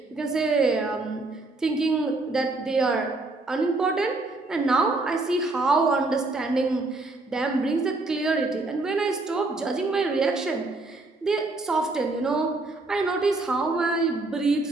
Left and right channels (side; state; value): left; quieter; 3.2 dB